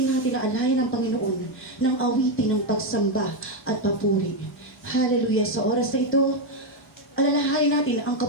natin na alayan ng Panginoon ng awitin ng pagsamba at papuri. Hallelujah. Sa oras na ito, alalahanin natin ang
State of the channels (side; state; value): both; normal; correlation 0.05